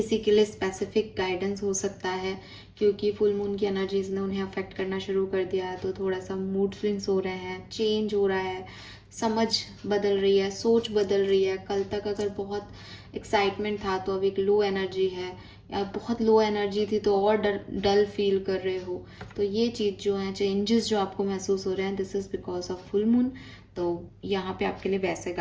के लिए स्पेसिफिक गाइडेंस हो सकता है, क्योंकि फुल मून की एनर्जीज ने उन्हें अफेक्ट करना शुरू कर दिया है। तो थोड़ा सा मूड स्विंग्स हो रहे हैं, चेंज हो रहा है, समझ बदल रही है, सोच बदल रही है। कल तक अगर बहुत एक्साइटमेंट था तो अब एक लो एनर्जी है, या बहुत लो एनर्जी थी तो और डल फील कर रहे हो। तो ये चीज़ जो है, चेंजेस जो आपको महसूस हो रहे हैं, this is because of full moon. तो यहाँ पे आपके लिए वैसे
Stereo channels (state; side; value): identical; both; correlation 1.00